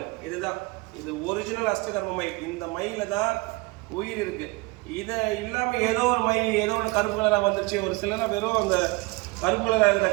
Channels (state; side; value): quieter; left; 24.7 dB